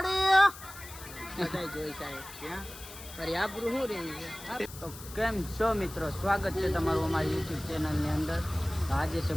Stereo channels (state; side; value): noise; left; hiss, 15 dB below the sound